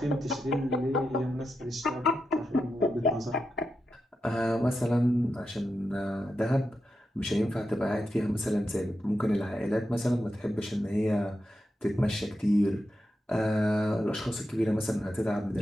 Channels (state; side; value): normal; both; correlation 0.88